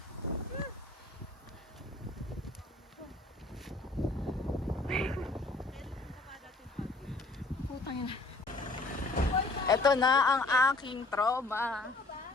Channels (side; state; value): right; quieter; 3.1 dB